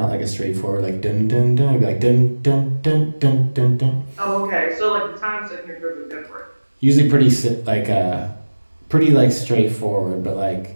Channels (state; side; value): inverted; both; correlation -1.00